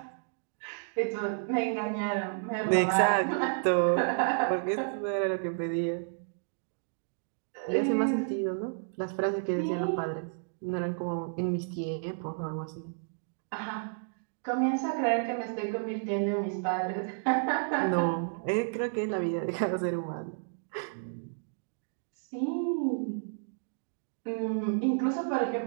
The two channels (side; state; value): left; silent; digital silence